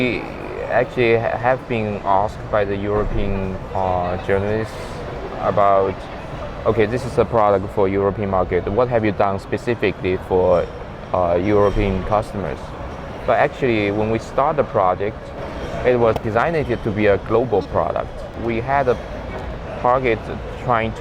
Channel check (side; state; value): both; identical; correlation 1.00